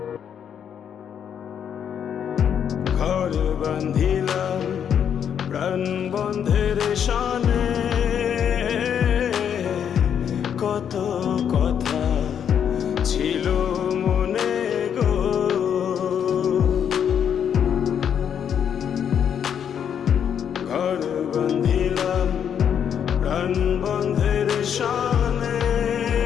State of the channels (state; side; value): quieter; right; 8.4 dB